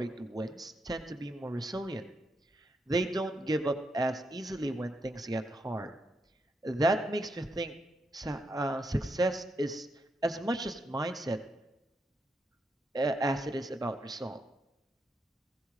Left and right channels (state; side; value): normal; both; correlation 0.81